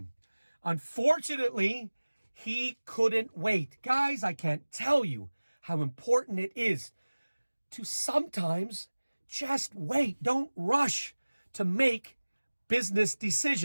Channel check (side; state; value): both; inverted; correlation -1.00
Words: Unfortunately, he couldn't wait. Guys, I can't tell you how important it is to sometimes just wait. Don't rush to make business